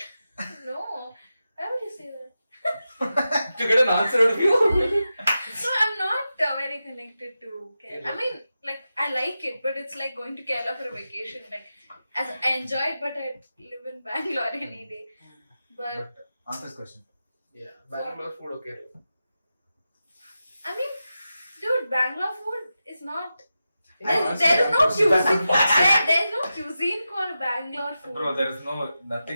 No. Why would you say that? to get an answer out of you. So I'm not very connected to Kerala. I mean, like I like it, but it's like going to Kerala for a vacation. Like, as I enjoy it, but I live in Bangalore any day. But Answer this question. Yeah, Bangalore food or Kerala. I mean, dude, Bangalore food is not There's no cuisine. There's no cuisine called Bangalore food. Bro, there is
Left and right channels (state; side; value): inverted; both; correlation -0.91